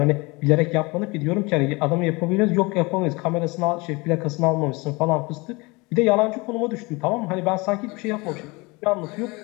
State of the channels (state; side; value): quieter; right; 25.5 dB